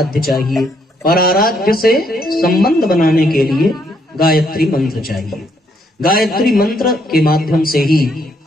चाहिए, और आराध्य से संबंध बनाने के लिए गायत्री मंत्र चाहिए। गायत्री मंत्र के माध्यम से ही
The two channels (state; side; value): normal; both; correlation 0.72